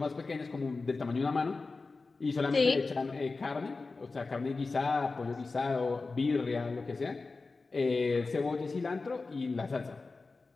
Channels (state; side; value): quieter; right; 3.9 dB